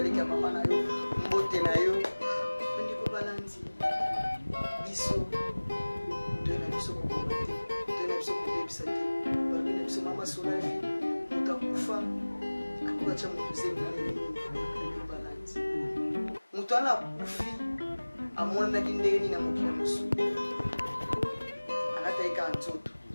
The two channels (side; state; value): both; inverted; correlation -1.00